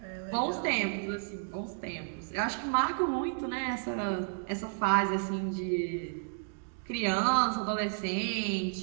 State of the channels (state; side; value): silent; left; digital silence